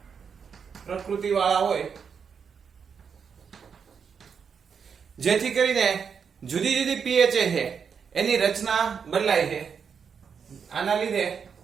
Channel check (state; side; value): quieter; left; 6.6 dB